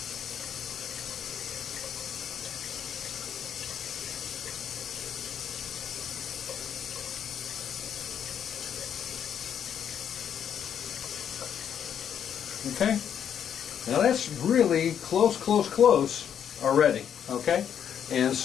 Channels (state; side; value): quieter; right; 8.7 dB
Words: Okay, now that's really close already, okay? And